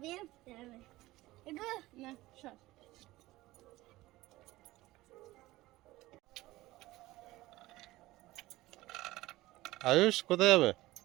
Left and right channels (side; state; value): left; quieter; 18.0 dB